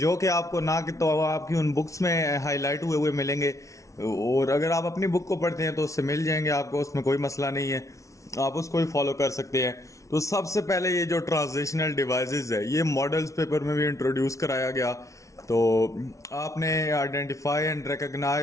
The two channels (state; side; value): late; right; 0.15 ms